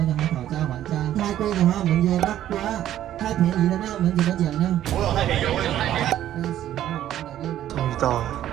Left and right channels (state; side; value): quieter; left; 12.1 dB